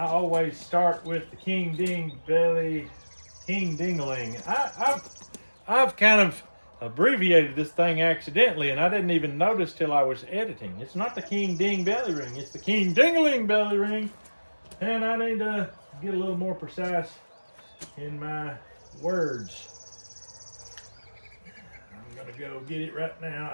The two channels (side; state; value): both; inverted; correlation -1.00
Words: always start with the King Ding Belly, King Dingling. I've kind of abbreviated this thing accidentally, and I didn't even notice till I was editing. It's not the King Ding Belly Ring, it's the King Dingling Belly Ring. And I need to get a little more precise in my words. I'm gonna go get it right now.